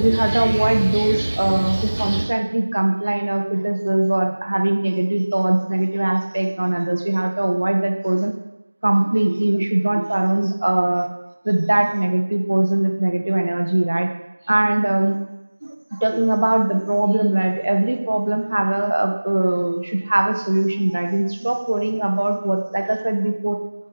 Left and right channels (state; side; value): inverted; both; correlation -1.00